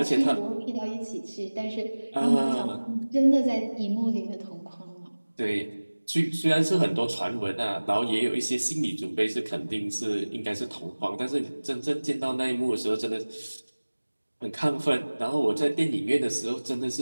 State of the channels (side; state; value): both; inverted; correlation -1.00